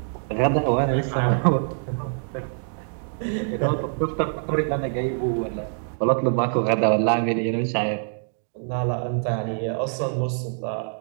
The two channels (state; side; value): silent; left; digital silence